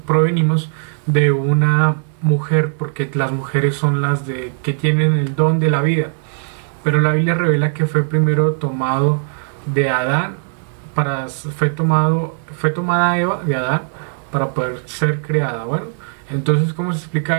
de una mujer, porque las mujeres son las que tienen el don de la vida. Pero la Biblia revela que fue primero tomado de Adán, fue tomada Eva de Adán para poder ser creada. Bueno, entonces, ¿cómo se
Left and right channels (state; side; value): silent; left; 67 dB below the other